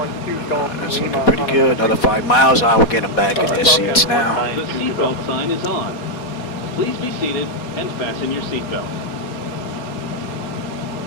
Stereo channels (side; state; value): right; late; 4.1 ms